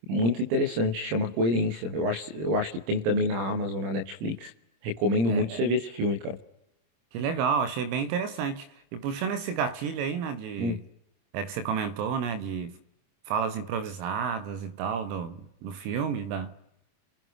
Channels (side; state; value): left; late; 26 ms